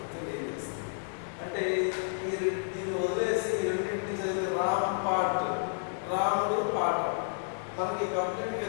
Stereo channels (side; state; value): right; silent; digital silence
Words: దీన్ని వదిలేసి ఈ రెండింటిని చదివితే రామ్ పాట్, రాముడు పాట. మనకి కంప్లీట్గా